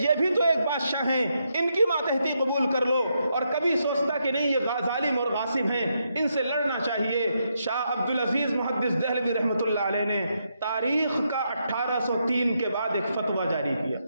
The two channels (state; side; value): inverted; both; correlation -0.80